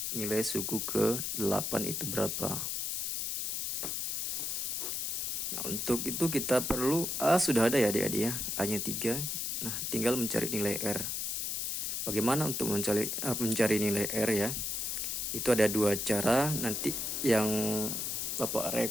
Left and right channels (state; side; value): noise; left; hiss, 1 dB below the sound